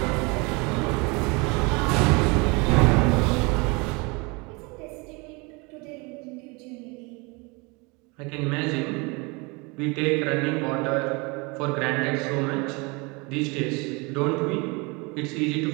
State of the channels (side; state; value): left; quieter; 27.9 dB